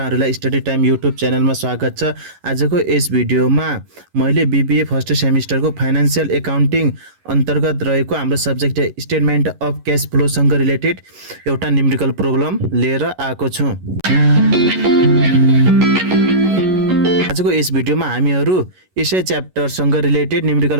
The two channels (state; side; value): late; left; 11 ms